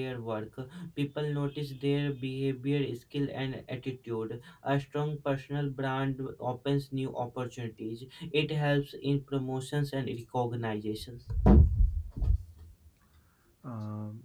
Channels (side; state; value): both; identical; correlation 1.00